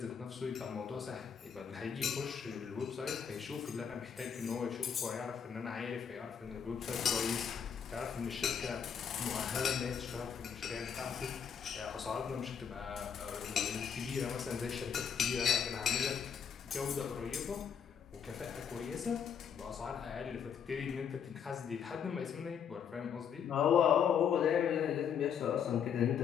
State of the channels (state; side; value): quieter; right; 7.5 dB